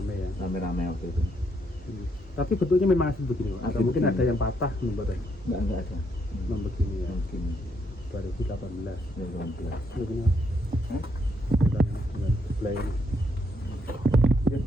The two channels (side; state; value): both; normal; correlation 0.74